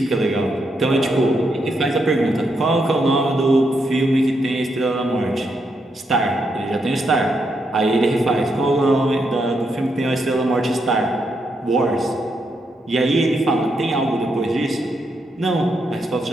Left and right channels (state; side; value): normal; both; correlation 0.80